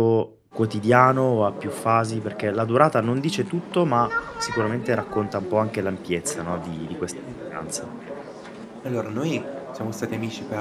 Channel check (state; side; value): identical; both; correlation 1.00